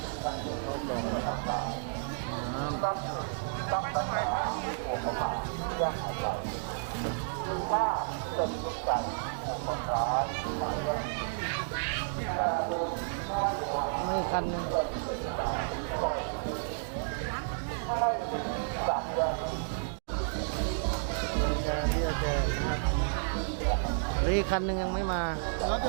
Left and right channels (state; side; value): silent; left; digital silence